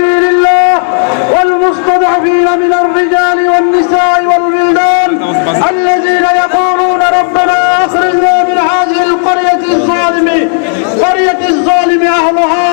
الله والمستضعفين من الرجال والنساء والولدان الذين يقولون ربنا أخرجنا من هذه القرية الظالم أهلها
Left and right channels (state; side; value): silent; right; 63 dB below the other